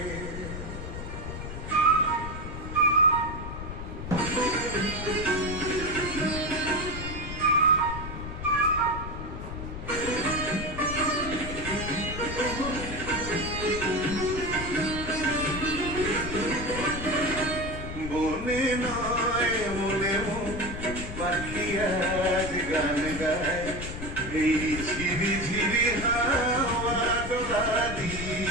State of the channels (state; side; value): noise; left; rumble, 8 dB below the sound